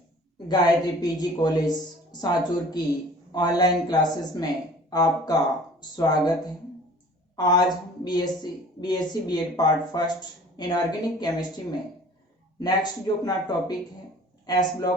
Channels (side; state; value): both; normal; correlation 0.47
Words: Gayatri PG college Sanchore की online classes में आपका स्वागत है। आज BSc BEd part first inorganic chemistry में नेक्स्ट जो अपना टॉपिक है एस